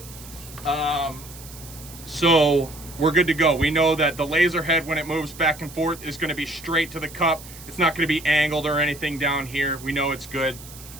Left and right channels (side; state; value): right; noise; hiss, 17 dB below the sound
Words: So we're good to go. We know that the laser head, when it moves back and forth, is gonna be straight to the cup. It's not gonna be angled or anything down here. We know it's good.